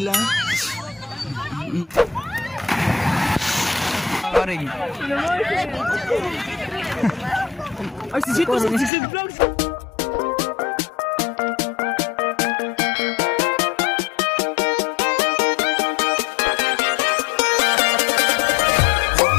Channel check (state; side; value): drops out; right; at 8.9 s